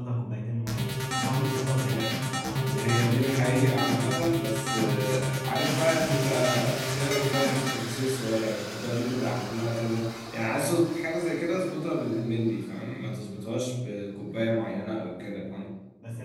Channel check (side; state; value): both; identical; correlation 1.00